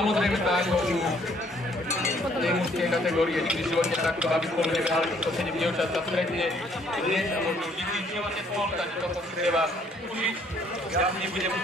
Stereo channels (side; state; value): both; normal; correlation 0.64